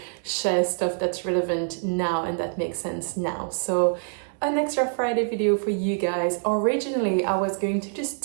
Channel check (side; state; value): left; silent; digital silence